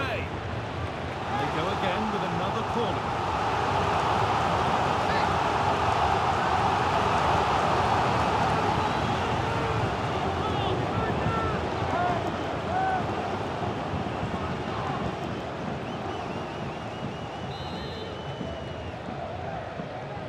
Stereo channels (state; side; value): identical; both; correlation 1.00